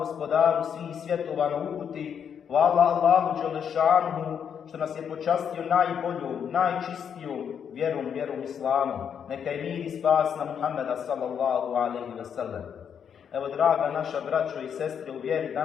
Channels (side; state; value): right; quieter; 7.8 dB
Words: svih svjetova na uputi, hvala Allahu Đelešanuhu što nas je počastio najboljom, najčistijom vjerom islamu. Neka je mir i spas na Muhammeda sallallahu alaihi wa sallam. Evo, draga naša braćo i sestre u vjeri,